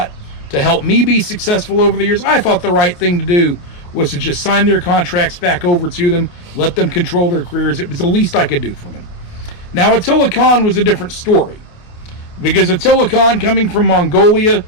to help me be successful over the years. I thought the right thing to do was to just sign their contracts back over to them, let them control their careers. It was the least I could do for them. Now, Attila Khan was a different story, because Attila Khan, coming from Mongolia,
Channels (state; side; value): late; right; 28 ms